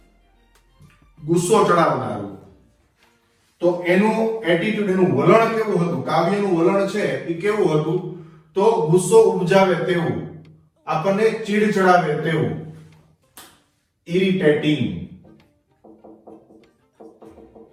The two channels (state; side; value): identical; both; correlation 1.00